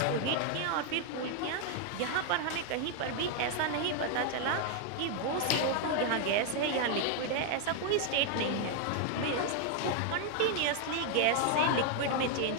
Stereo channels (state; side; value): different; both; correlation 0.00